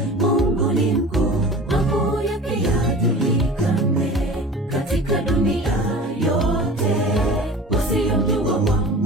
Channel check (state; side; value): normal; both; correlation 0.39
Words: katika dunia yote. Wasiomjua